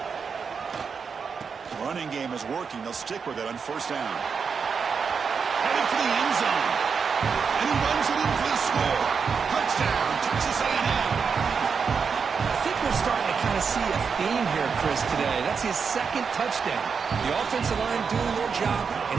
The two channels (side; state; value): left; quieter; 5.8 dB